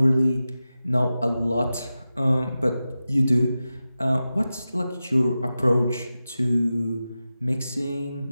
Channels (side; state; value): both; inverted; correlation -0.93